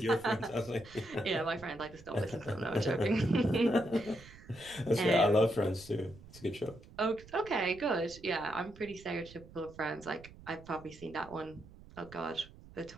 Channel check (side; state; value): right; noise; rumble, 19 dB below the sound